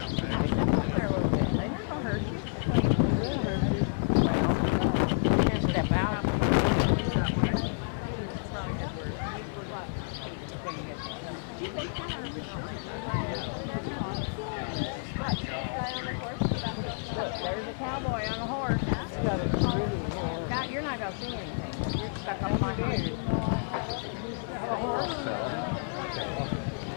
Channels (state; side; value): silent; right; 58 dB below the other